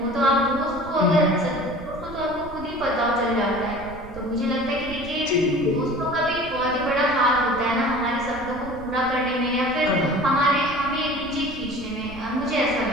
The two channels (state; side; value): noise; right; rumble, 16 dB below the sound